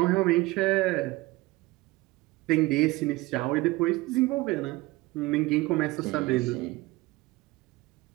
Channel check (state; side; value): quieter; left; 20.7 dB